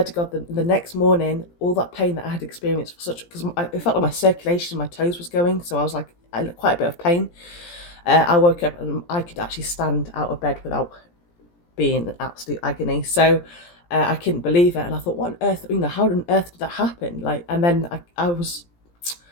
to God, the next morning, all that pain that I had experienced because it felt like my circulation in my toes was going, so I was like quite a bit of pain. I woke up and I could actually stand out of bed without being in absolute agony. So I couldn't believe it, and I thought, what on earth? How on earth did that happen? And then I was.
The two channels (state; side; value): late; right; 17 ms